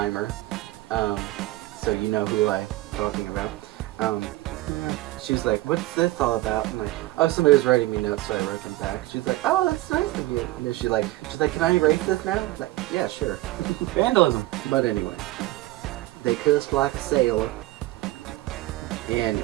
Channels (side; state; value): left; quieter; 18.1 dB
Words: So you know who I'm talking about. She was like, what's this all about? I'm like, oh, somebody was writing me notes, so I wrote them back. She was like, oh, that's nice of you. And then she's like, can I erase this now? I'm like, yeah, sure. Vandalism. But anyway, they cussed like a sailor.